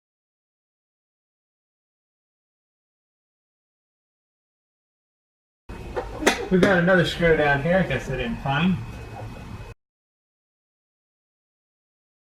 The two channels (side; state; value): both; identical; correlation 1.00